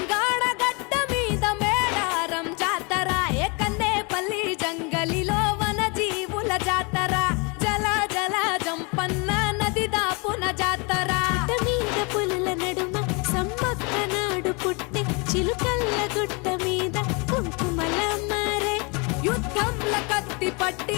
గడ్డ మీద మేడారం జాతర ఏ కన్నేపల్లి జంగలిలో వన జీవుల జాతర జల జల జంపన్న నది దాపున జాతర మీద పులుల నడుమ సమ్మక్క నాడు పుట్టి చిలుకల్ల గుట్ట మీద కుంకుమల మారే యుద్ధంల కత్తి పట్టి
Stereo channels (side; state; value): right; quieter; 30.8 dB